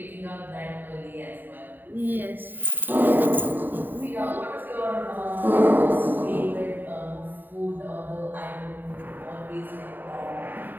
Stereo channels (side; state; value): left; late; 0.091 ms